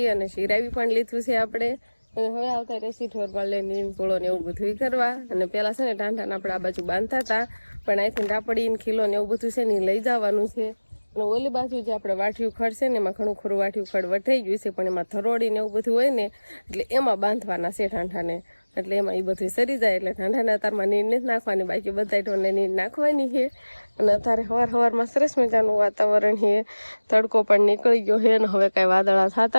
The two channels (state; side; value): inverted; both; correlation -1.00